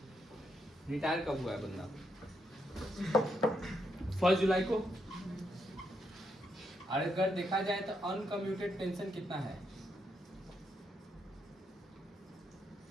रिटायर कब हुआ है बंदा? 1 जुलाई को। और अगर देखा जाए तो अनकम्यूटेड पेंशन कितना है?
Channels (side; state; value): both; normal; correlation 0.79